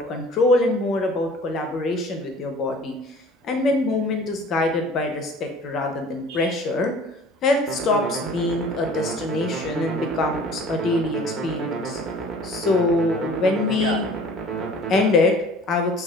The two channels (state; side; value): normal; both; correlation 0.47